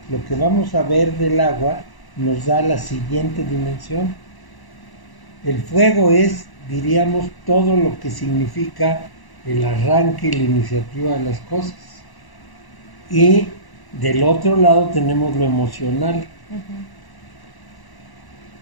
lo que vamos a ver del agua nos da la siguiente dimensión. El fuego es, diríamos, todo lo que significa el arranque y la iniciativa de las cosas. Y del otro lado tenemos lo emocional,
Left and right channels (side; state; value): right; late; 1.0 ms